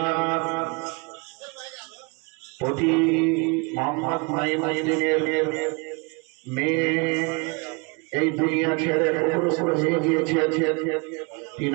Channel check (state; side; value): quieter; left; 30.6 dB